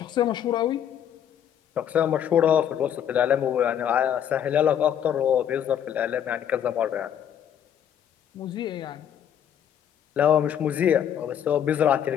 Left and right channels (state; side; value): quieter; right; 9.4 dB